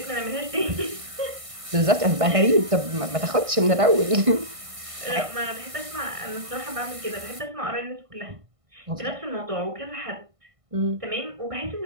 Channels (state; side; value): late; left; 1.6 ms